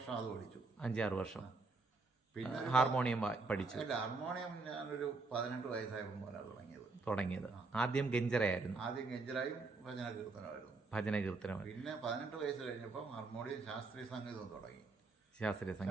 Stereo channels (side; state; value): left; quieter; 3.8 dB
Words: അത് പഠിച്ചു. 5-6 വർഷം. പിന്നെ ഹാർമോണിയം പഠിച്ചു? അല്ല, ഹാർമോണിയം ഞാനൊരു 18 വയസ്സായപ്പോൾ മുതലാണ് തുടങ്ങിയത്. ആദ്യം ഗഞ്ചറയായിരുന്നു. ആദ്യം ഗഞ്ചറായും ഭജന കീർത്തനമായിരുന്നു. ഭജന കീർത്തനം. പിന്നെ 18 വയസ്സ് കഴിഞ്ഞപ്പോൾ ഹാർമോണിയം ശാസ്ത്രീയ സംഗീതം തുടങ്ങി. ശാസ്ത്രീയ